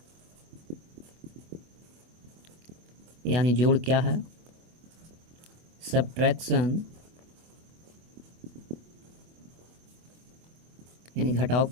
यानी जोड़ क्या है, सब्ट्रैक्शन यानी घटाव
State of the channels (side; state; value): left; late; 24 ms